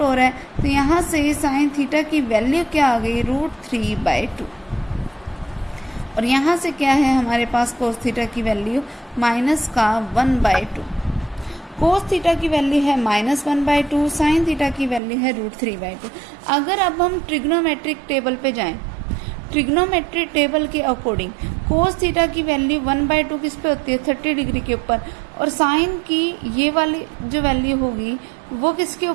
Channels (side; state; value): left; drops out; at 15.0 s